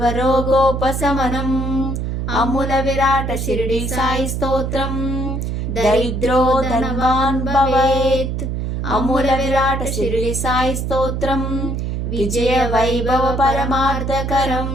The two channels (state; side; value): noise; right; hum, 2 dB below the sound